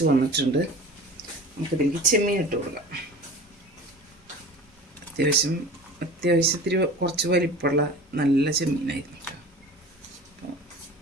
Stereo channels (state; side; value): normal; both; correlation 0.38